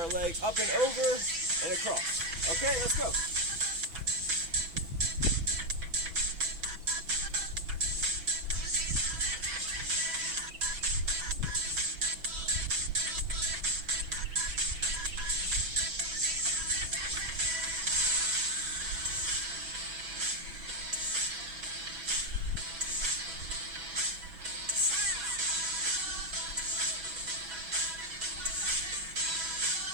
leg up and over and across. Okay, let's go.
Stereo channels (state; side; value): late; left; 6.1 ms